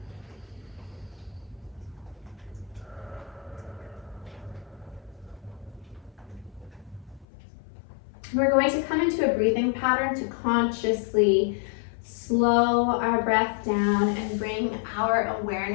We're going to come into a breathing pattern to consciously slow our breath down and bring our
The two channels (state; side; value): drops out; right; at 7.2 s